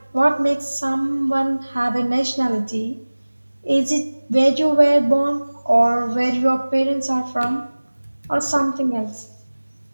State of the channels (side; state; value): both; inverted; correlation -1.00